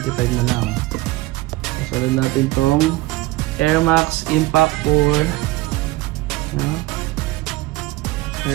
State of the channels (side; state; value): left; quieter; 19.1 dB